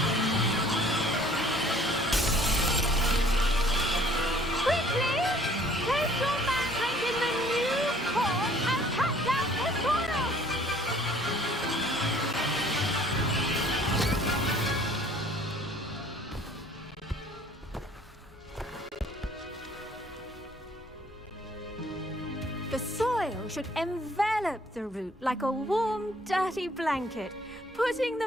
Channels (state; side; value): normal; both; correlation 0.57